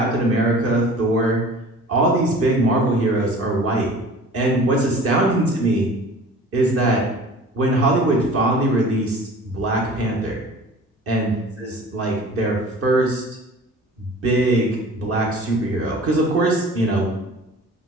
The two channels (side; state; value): both; normal; correlation 0.44